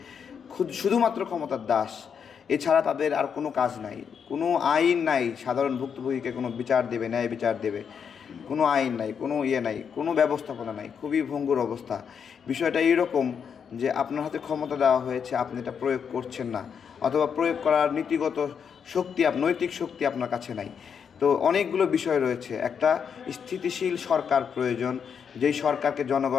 শুধুমাত্র ক্ষমতার দাস। এছাড়া তাদের আর কোনো কাজ নাই, কোনো আইন নাই সাধারণ ভুক্তভোগীকে কোনো বিচার দেবে, ন্যায় বিচার দেবে। কোনো আইন নাই, কোনো নাই, কোনো ব্যবস্থাপনা নাই। খুবই ভঙ্গুর অবস্থা। বিষয়টা এইরকম যে আপনার হাতে ক্ষমতা দেওয়া হয়েছে, আপনি এটা প্রয়োগ করছেন না, অথবা প্রয়োগ করার নীতিগত শক্তি, নৈতিক শক্তি আপনার কাছে নাই। তো অনেকগুলো বিষয় রয়েছে। একটা স্থিতিশীল সরকার প্রয়োজন, যেই সরকারকে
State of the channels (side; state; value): right; quieter; 7.0 dB